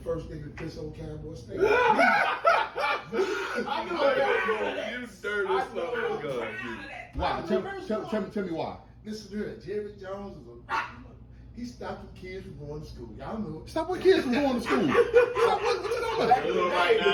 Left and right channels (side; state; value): both; identical; correlation 1.00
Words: first nigga to piss on Cowboy State. I know that. You dirty son of a gun. Why? Tell me why. Listen to it. Jerry Jones is he stopped the kids from going to school. Y'all know it. Stop what kids from going to school. What you talking about? Little right